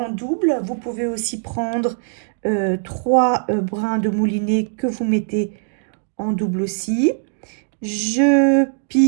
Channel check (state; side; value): silent; left; digital silence